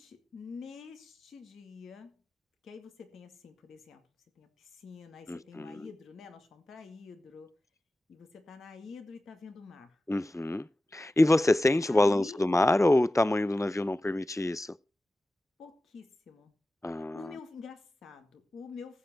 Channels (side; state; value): both; normal; correlation 0.95